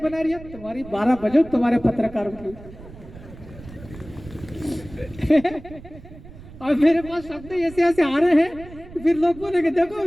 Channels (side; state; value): right; noise; rumble, 17 dB below the sound